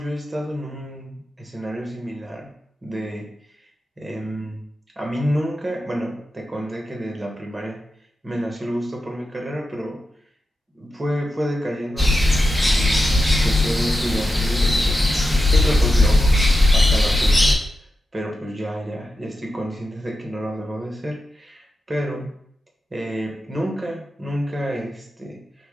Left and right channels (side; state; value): both; normal; correlation 0.90